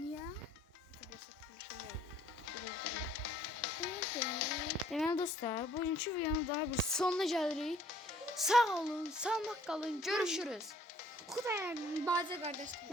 Deməli dostlar, bugünkü videonun daha bir sonuna gəlirik. Sağ olun, sağlık kalın, görüşürüz. Xudayar bacı qardaşlar.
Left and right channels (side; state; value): both; normal; correlation 0.59